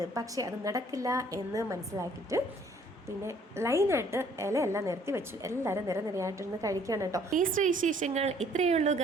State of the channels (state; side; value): normal; both; correlation 0.60